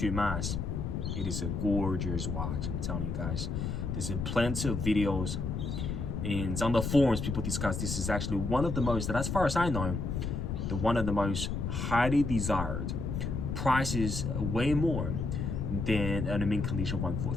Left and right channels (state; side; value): noise; left; rumble, 2 dB below the sound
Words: mass. It is a gorgeous watch, I'm telling you guys. There's plenty of videos and on the forums people discuss this is actually one of the most, as far as I know, one of the most highly desired. Prices way more than an mint condition